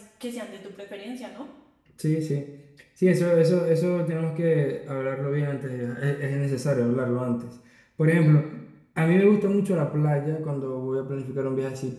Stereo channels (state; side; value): identical; both; correlation 1.00